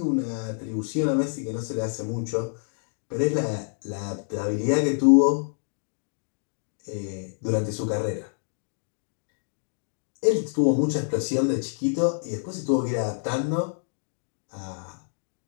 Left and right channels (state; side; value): silent; right; digital silence